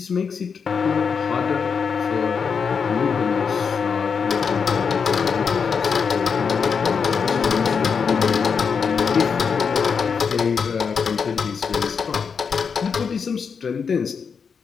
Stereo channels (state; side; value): quieter; right; 6.0 dB